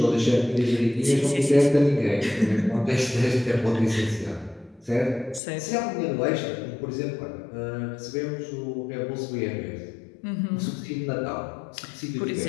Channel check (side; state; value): right; drops out; at 5.4 s